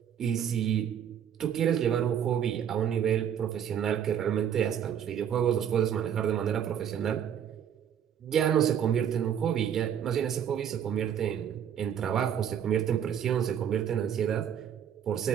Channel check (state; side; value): quieter; left; 9.1 dB